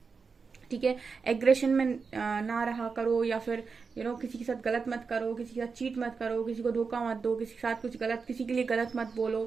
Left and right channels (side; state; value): left; quieter; 5.1 dB